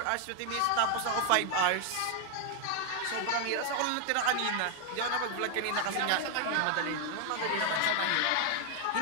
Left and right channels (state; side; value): different; both; correlation 0.00